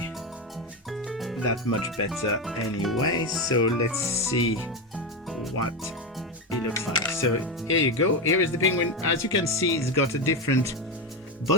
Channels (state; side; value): normal; both; correlation 0.13